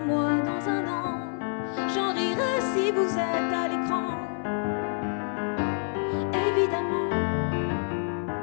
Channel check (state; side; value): silent; right; 60 dB below the other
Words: dans un an. J'en rirai si vous êtes à l'écran. Évidemment,